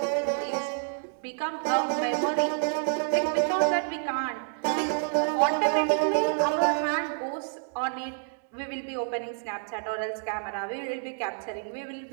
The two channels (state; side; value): silent; left; digital silence